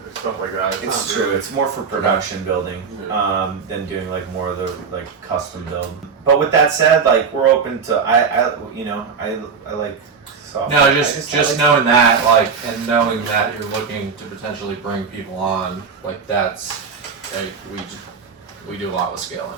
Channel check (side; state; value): left; quieter; 5.8 dB